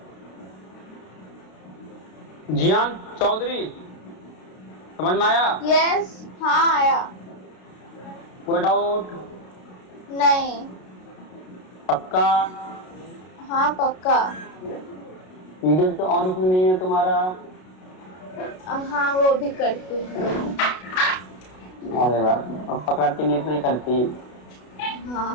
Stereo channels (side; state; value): right; late; 32 ms